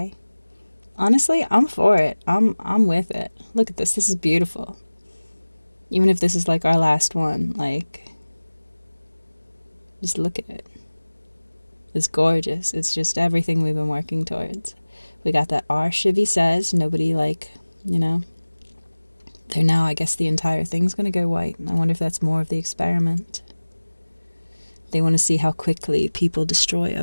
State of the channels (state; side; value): inverted; both; correlation -1.00